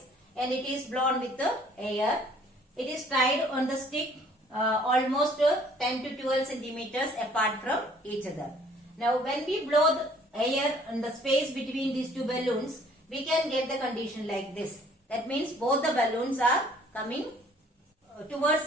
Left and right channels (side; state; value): both; normal; correlation 0.57